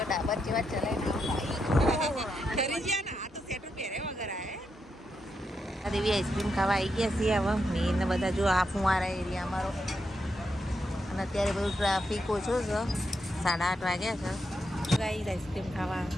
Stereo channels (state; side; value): normal; both; correlation 0.83